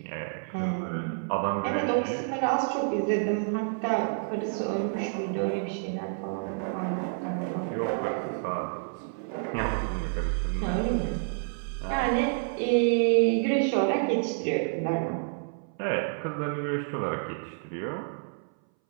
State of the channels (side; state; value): left; silent; 59 dB below the other